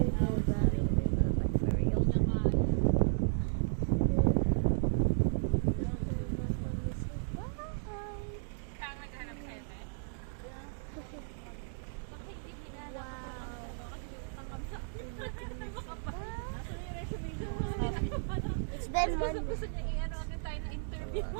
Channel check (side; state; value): left; silent; digital silence